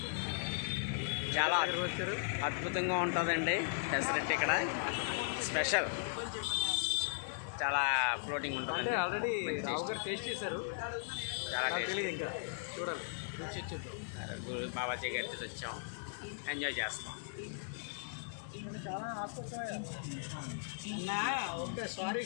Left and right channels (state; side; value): silent; right; digital silence